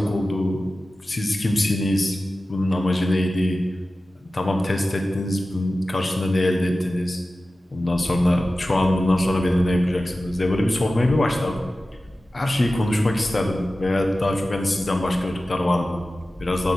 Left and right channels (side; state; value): both; normal; correlation 0.95